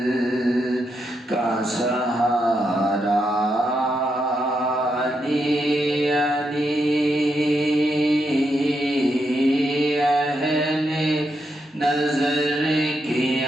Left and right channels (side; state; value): both; normal; correlation 0.82